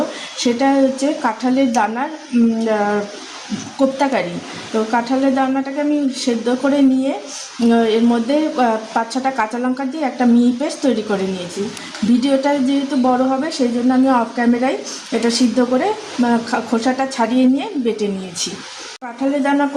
সেটা হচ্ছে কাঁঠালের দানার কোপ্তাকারি। তো কাঁঠালের দানাটাকে আমি সেদ্ধ করে নিয়ে এর মধ্যে 5-6টা কাঁচা লঙ্কা দিয়ে একটা মিহি পেস্ট তৈরি করে নিয়েছি। ভিডিওটা যেহেতু বড় হবে সেই জন্য আমি অফ ক্যামেরায় এটা সিদ্ধ করে খোসাটা ছাড়িয়ে নিয়ে বেটে নিয়েছি। কাঁঠালের দানা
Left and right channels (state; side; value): identical; both; correlation 1.00